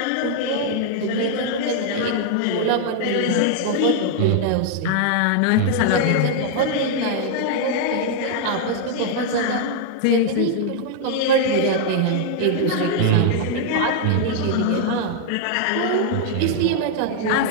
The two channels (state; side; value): different; both; correlation 0.00